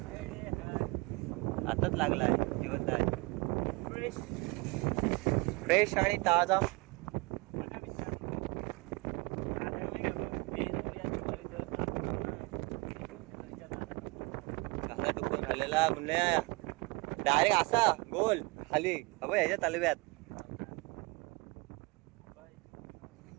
आताच लागला आहे. जिवंत आहे. फ्रेश आणि ताजा. कसा टुकून खाल्लेला पुण्या डायरेक्ट असा गोल खाली ह्याच्या तलव्यात.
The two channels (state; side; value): quieter; left; 26.4 dB